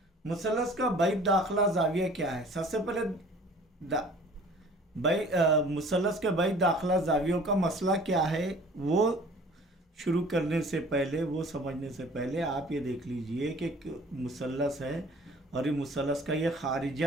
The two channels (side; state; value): both; normal; correlation 0.49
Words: मुसल्लस का बैद दाखिला जाविया क्या है? सबसे पहले मुसल्लस के बैद दाखिला जावियों का मसला क्या है वो शुरू करने से पहले, वो समझने से पहले आप ये देख लीजिए कि मुसल्लस है और ये मुसल्लस का ये